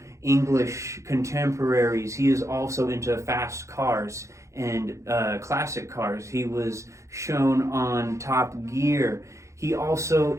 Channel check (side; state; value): left; late; 0.14 ms